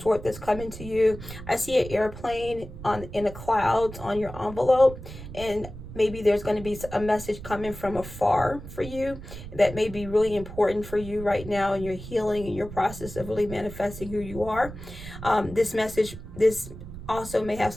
that's coming to you. I see an airplane in the clouds on your envelope, and maybe there's going to be a message coming from afar for you that may be really important for you right now in your healing and your process of really manifesting who you are. This also may have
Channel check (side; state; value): right; noise; rumble, 12 dB below the sound